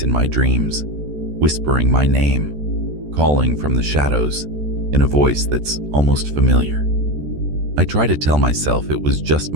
in my dreams, whispering my name, calling from the shadows in a voice that's almost familiar. I try to tell myself it was just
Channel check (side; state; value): left; late; 14 ms